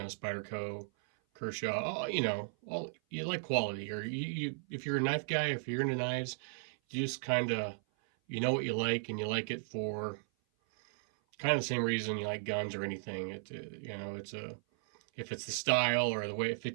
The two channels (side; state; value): left; silent; 54 dB below the other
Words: Kershaw, you like quality, or if you're a knife guy, if you're into knives, you just kind of, you know what you like, and you like it for kind of the same reason you like guns or anything. If it's the style or the way it